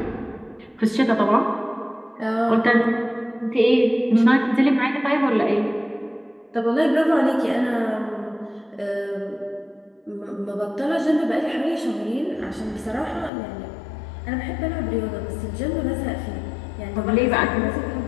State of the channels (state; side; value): drops out; right; at 13.3 s